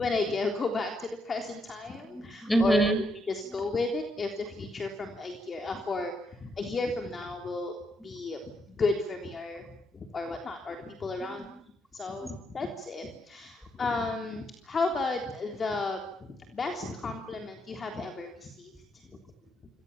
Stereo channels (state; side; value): normal; both; correlation 0.77